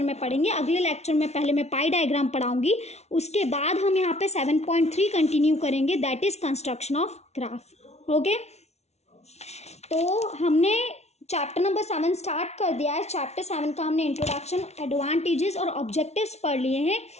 में पढ़ेंगे। अगले लेक्चर में पहले मैं पाई डायग्राम पढ़ाऊंगी, उसके बाद हम यहाँ पे 7.3 कंटिन्यू करेंगे, that is construction of graph. Okay, तो हमने चैप्टर नंबर 7 स्टार्ट कर दिया है। चैप्टर 7 का हमने इंट्रोडक्शन, एडवांटेजेस और ऑब्जेक्टिव्स पढ़ लिए हैं।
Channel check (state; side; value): late; right; 0.31 ms